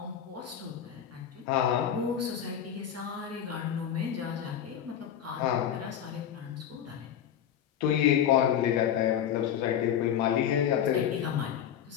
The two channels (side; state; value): right; quieter; 9.5 dB